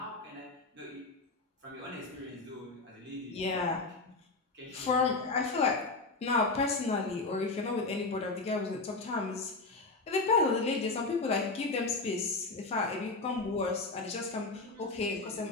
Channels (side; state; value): right; quieter; 3.5 dB